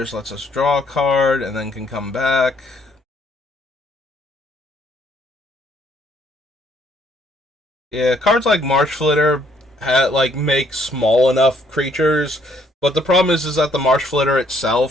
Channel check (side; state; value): both; normal; correlation 0.66